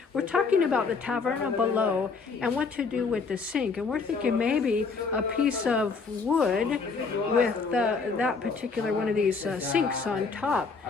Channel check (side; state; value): right; quieter; 4.8 dB